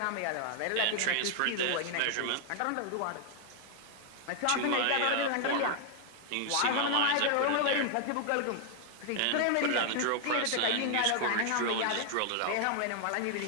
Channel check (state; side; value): different; both; correlation 0.00